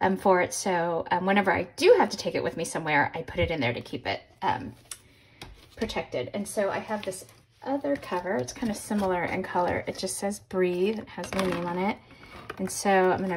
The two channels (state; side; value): identical; both; correlation 1.00